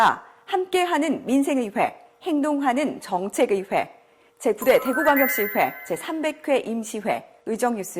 함께하는 민생의회, 행동하는 정책의회, 제9대 대구광역시회 제300회 임시회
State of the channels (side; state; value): both; identical; correlation 1.00